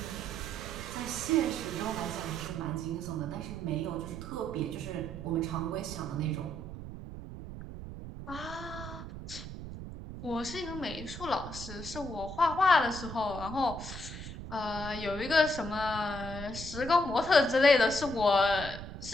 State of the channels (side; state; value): right; noise; rumble, 10 dB below the sound